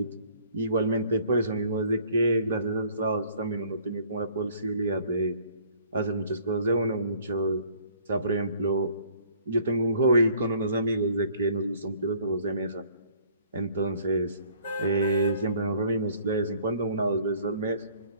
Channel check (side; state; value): both; inverted; correlation -0.58